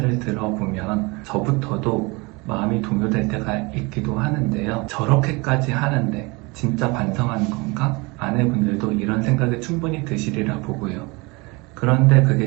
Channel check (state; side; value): quieter; left; 26.3 dB